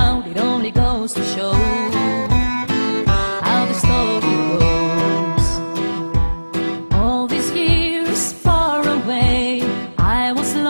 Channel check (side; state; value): both; inverted; correlation -1.00